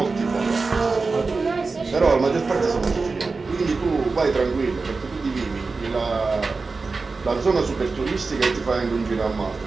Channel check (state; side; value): quieter; left; 4.1 dB